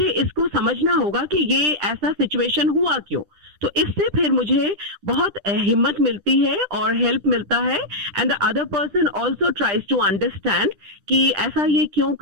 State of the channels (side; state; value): left; late; 10 ms